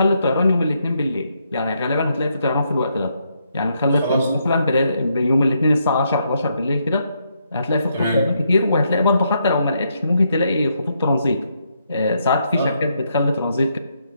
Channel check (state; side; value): inverted; both; correlation -0.77